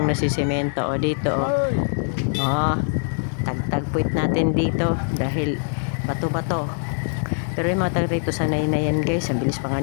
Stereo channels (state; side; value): silent; right; digital silence